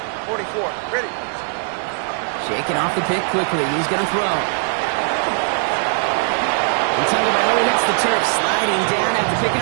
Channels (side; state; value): left; silent; 66 dB below the other